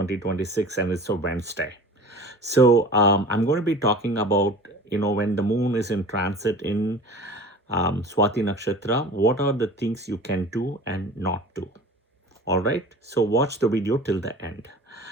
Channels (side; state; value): both; normal; correlation 0.40